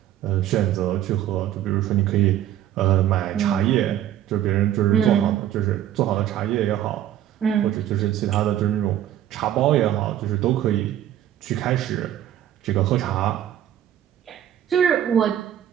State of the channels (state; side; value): quieter; left; 11.5 dB